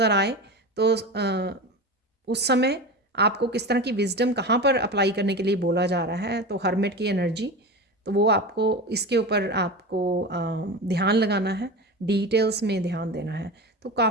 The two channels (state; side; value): normal; both; correlation 0.27